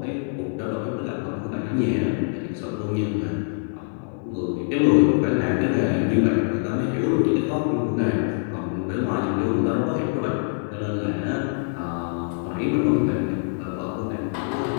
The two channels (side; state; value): right; silent; digital silence